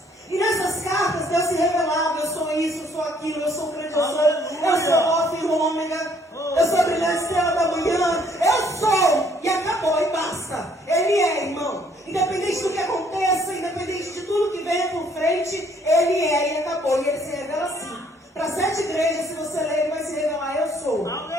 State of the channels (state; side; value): normal; both; correlation 0.63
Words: E nessas cartas Deus se revelava: eu sou isso, eu sou aquilo, eu sou o grande, eu sou o Alfa e o Ômega, eu sou a brilhante estrela da manhã, eu sou, e acabou, e basta. Ele é, irmão. Independente do que aconteça, independente de tudo que venha por frente, Ele é, e acabou. E Ele se revela assim. Para 7 igrejas, se você ler, Ele vai se revelar: eu sou.